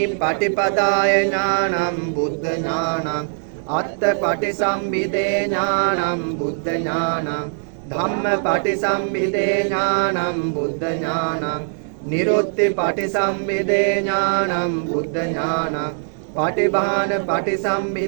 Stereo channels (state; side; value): silent; left; digital silence